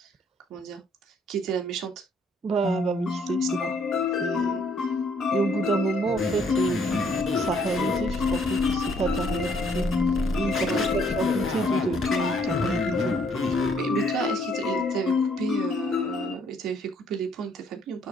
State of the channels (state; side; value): normal; both; correlation 0.66